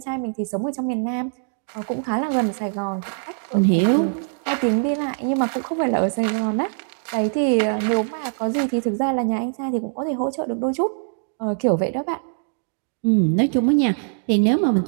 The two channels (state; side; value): silent; left; digital silence